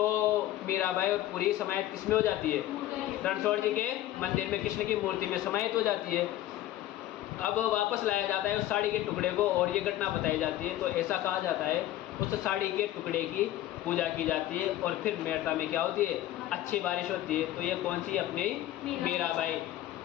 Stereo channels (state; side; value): quieter; right; 14.0 dB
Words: मीराबाई और पूरी समाहित किस में हो जाती है, रणछोड़ जी के मंदिर में कृष्ण की मूर्ति में समाहित हो जाती है। अब वापस लाया जाता है उस साड़ी के टुकड़े को और ये घटना बताई जाती है। तो ऐसा कहा जाता है उस साड़ी के टुकड़े की पूजा की जाती है और फिर मेड़ता में क्या होती है, अच्छी बारिश होती है। तो ये कौन सी, अपनी मीराबाई।